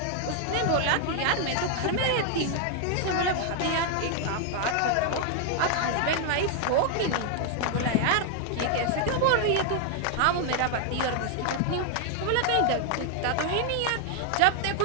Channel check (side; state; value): both; different; correlation 0.00